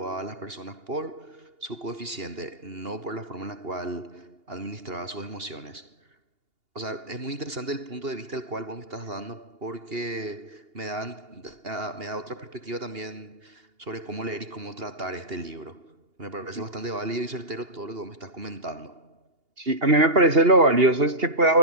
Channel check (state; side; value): late; left; 2.8 ms